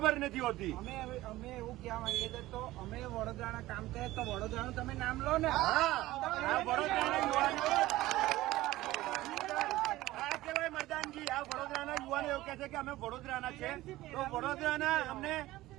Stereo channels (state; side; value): quieter; left; 17.0 dB